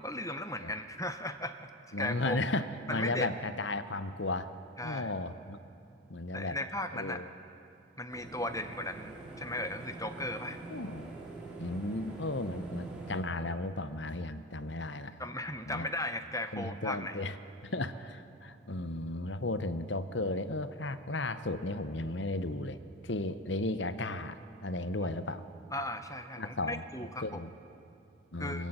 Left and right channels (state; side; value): normal; both; correlation 0.21